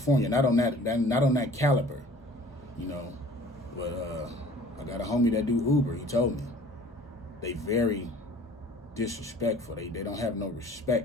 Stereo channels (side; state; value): both; normal; correlation 0.49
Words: Not on that caliber, you know. But I got a homie that do Uber. He told me they very disrespectful. They don't have no